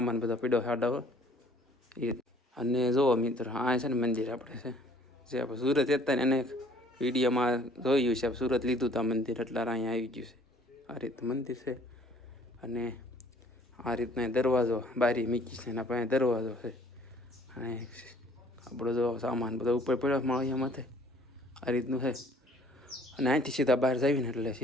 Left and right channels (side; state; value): both; normal; correlation 0.57